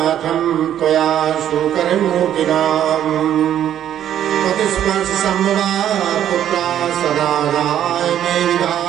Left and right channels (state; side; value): quieter; left; 10.7 dB